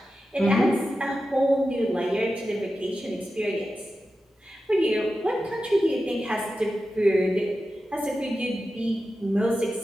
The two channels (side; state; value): both; normal; correlation 0.92